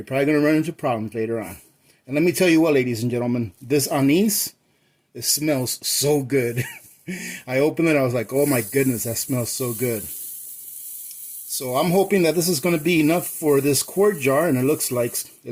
probably going to run into problems later on. And let me tell you what, ladies and gentlemen, this anise, it smells so good. I opened it, I was like, oh my goodness, that smells so good. So I'm hoping that this is going to be enough for this quart jar, and it looks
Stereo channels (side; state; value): both; identical; correlation 1.00